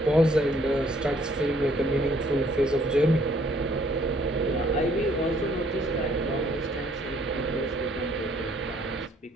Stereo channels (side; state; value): both; normal; correlation 0.63